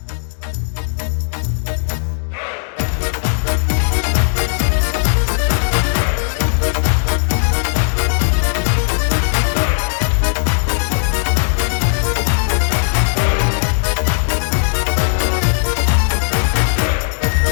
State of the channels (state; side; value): silent; right; digital silence